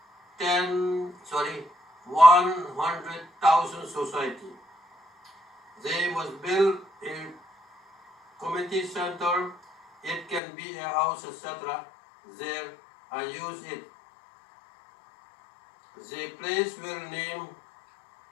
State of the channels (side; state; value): right; drops out; at 10.4 s